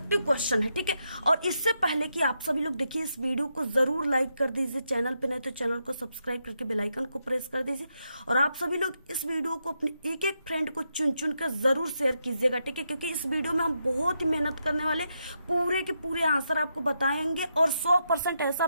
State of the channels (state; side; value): inverted; both; correlation -0.82